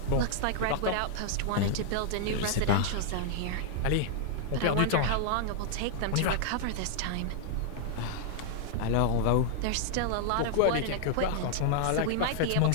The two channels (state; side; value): different; both; correlation 0.00